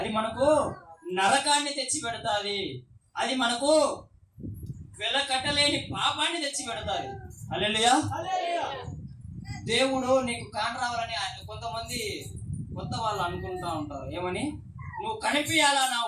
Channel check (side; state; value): both; identical; correlation 1.00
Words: మనకు నరకాన్ని తెచ్చి పెడతాది, అది మనకు వెలకట్టలేని పాపాన్ని తెచ్చి పెడతాది. హల్లెలూయా. దేవుడు నీకు కాని రావాలని కొంతమంది కొత్త వాళ్ళు అనుకుంటా ఉంటారు. ఏమని? నువ్వు కనిపించాలా,